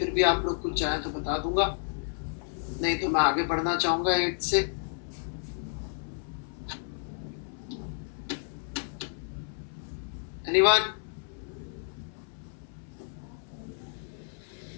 भी आप लोग कुछ चाहें तो बता दूंगा, नहीं तो मैं आगे बढ़ना चाहूंगा 8 से। एनीवन?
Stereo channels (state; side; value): silent; right; 57 dB below the other